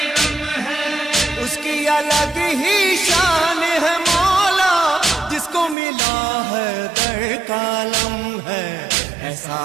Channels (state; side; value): drops out; left; at 5.8 s